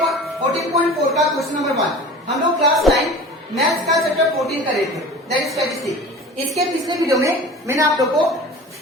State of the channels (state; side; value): normal; both; correlation 0.38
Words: 14.4 का क्वेश्चन नंबर 1। हम लोग क्लास 9 मैथ्स का चैप्टर 14 कर रहे थे, दैट इज स्टैटिस्टिक्स। इसके पिछले वीडियो में मैंने आप लोग को